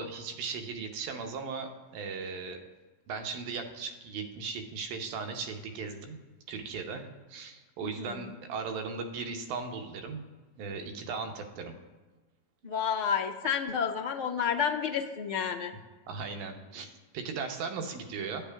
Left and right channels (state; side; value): late; left; 12 ms